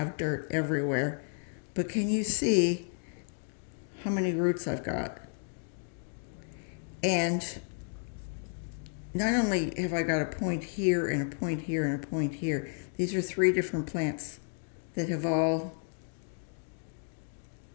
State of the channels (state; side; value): silent; right; 56 dB below the other